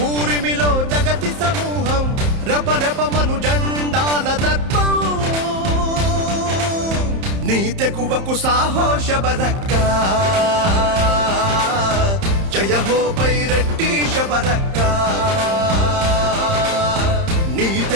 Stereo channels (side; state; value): left; late; 31 ms